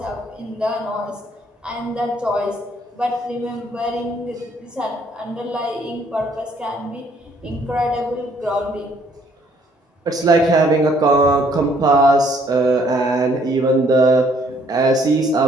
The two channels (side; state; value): both; normal; correlation 0.64